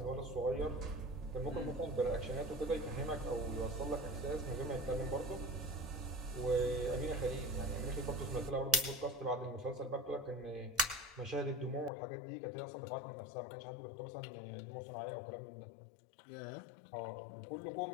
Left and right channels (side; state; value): right; drops out; at 11.9 s